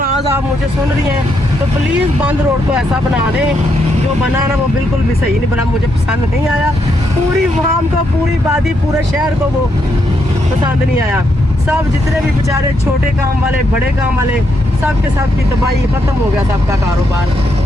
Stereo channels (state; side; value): normal; both; correlation 0.78